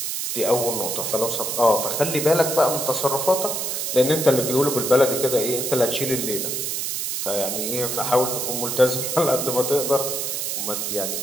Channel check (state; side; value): noise; right; hiss, 2 dB below the sound